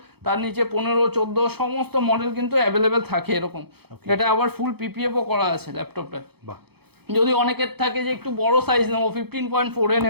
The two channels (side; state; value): left; late; 0.97 ms